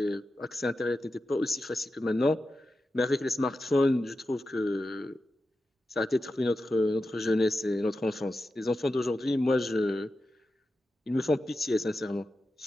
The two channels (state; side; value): normal; both; correlation 0.91